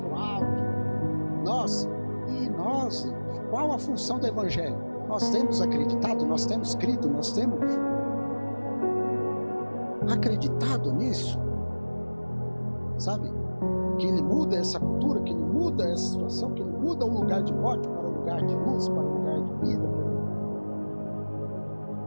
o alto, nossa, e nós, qual a função do Evangelho? Nós temos acreditado, nós temos crido, nós temos acreditado nisso, sabe? Que ele muda essa cultura, que ele muda essa situação, que ele muda o lugar de morte para o lugar de luz, para o lugar de vida.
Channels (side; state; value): both; inverted; correlation -1.00